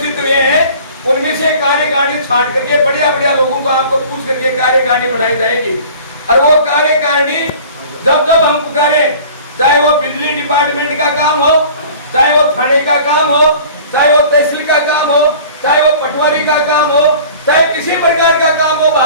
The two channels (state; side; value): inverted; both; correlation -0.45